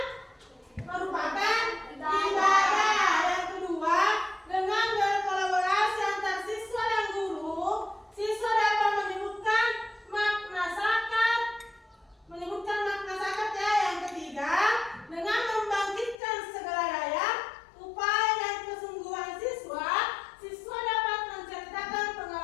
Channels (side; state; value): right; drops out; at 16.2 s